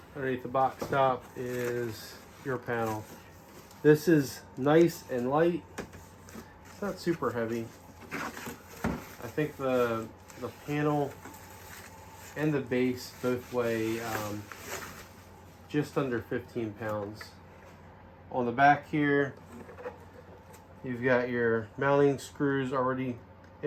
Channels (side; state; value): both; identical; correlation 1.00